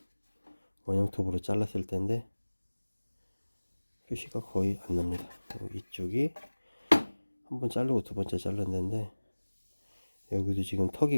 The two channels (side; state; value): both; inverted; correlation -1.00